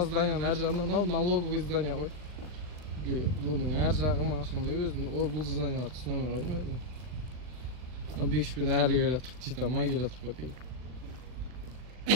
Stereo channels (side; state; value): left; late; 39 ms